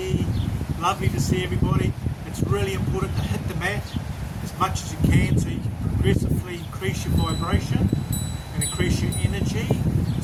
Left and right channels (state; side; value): identical; both; correlation 1.00